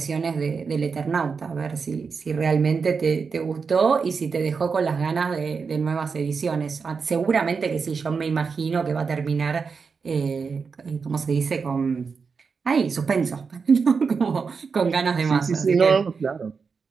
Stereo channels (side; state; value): left; quieter; 5.3 dB